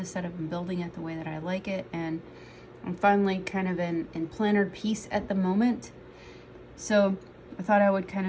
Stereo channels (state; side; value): identical; both; correlation 1.00